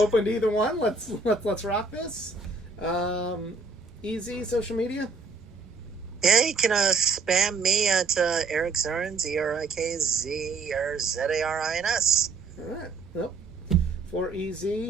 to either one. Let's rock this. Easy social media. Yeah, you can spam me at Eric Zarins, ERIKZRZARINS. All right. Well, for EZ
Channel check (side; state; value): left; quieter; 4.1 dB